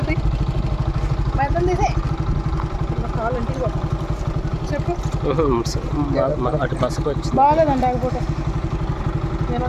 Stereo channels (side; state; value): both; identical; correlation 1.00